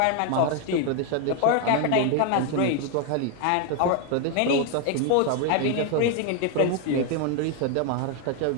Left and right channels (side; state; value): both; different; correlation 0.01